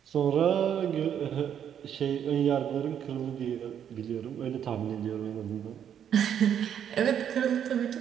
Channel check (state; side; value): quieter; left; 9.0 dB